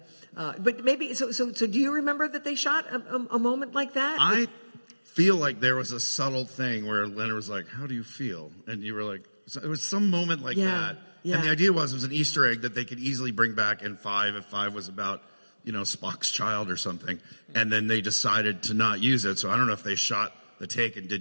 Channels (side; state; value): both; inverted; correlation -1.00